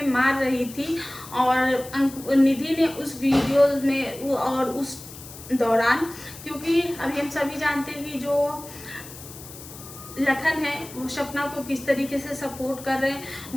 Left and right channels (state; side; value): noise; left; hiss, 15 dB below the sound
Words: मार रही थी और निधि ने उस वीडियो में और उस दौरान, क्योंकि अभी हम सभी जानते हैं कि जो लखन है वो सपना को किस तरीके से सपोर्ट कर रहे हैं।